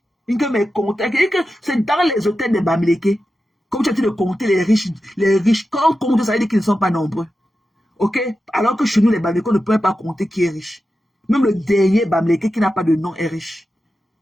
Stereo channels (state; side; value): normal; both; correlation 0.91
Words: C'est dans les hôtels de Bamileke. Comme tu as dit de compter les riches. Quand on compte, ça veut dire qu'ils ne sont pas nombreux. Ok? Alors que chez nous, les Bamileke, on ne peut pas compter qui est riche. Même le dernier Bamileke qui n'a pas de nom est riche.